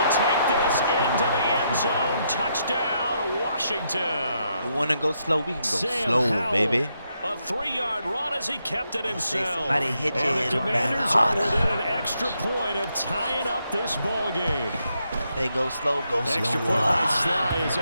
take this into the end zone. Touchdown, Washington. You want to go slow? We can go Sam slow, Howell, baby. A 3-yard run as he kept it himself. Somebody hit you And the in the Commanders back. are within an extra point of tying up this ball game. They go slow, go slow. Extra point by Sly is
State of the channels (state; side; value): inverted; both; correlation -0.79